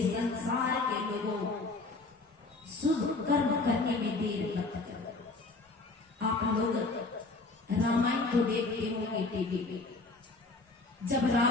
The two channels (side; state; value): right; quieter; 3.4 dB